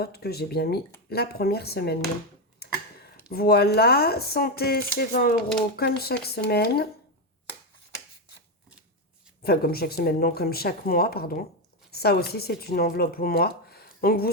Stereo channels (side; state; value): both; normal; correlation 0.08